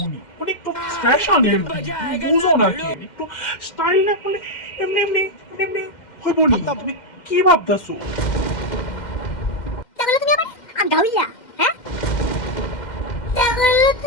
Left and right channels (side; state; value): right; late; 2.1 ms